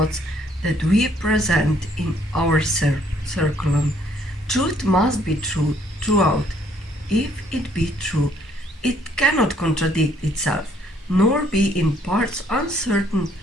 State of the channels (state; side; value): normal; both; correlation 0.65